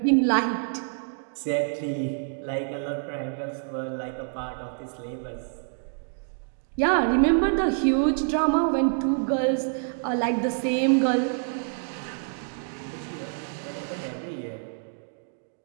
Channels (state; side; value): silent; left; 60 dB below the other